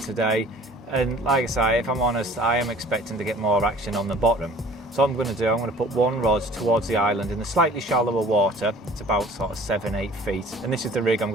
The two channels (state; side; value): normal; both; correlation 0.49